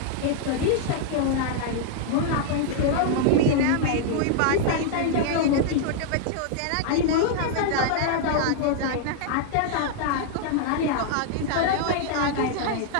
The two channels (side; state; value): both; different; correlation -0.01